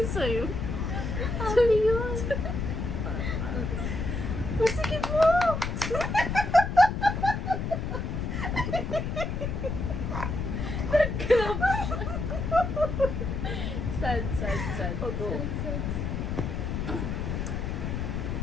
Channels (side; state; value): left; noise; rumble, 2 dB below the sound